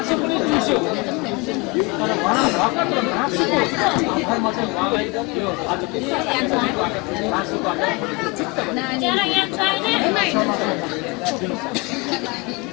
पनि चुस्यो तर उहाँ भर्खर मासुको आधारमा चाहिँ उहाँलाई यो आज मासुबाट चित्त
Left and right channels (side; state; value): right; quieter; 27.1 dB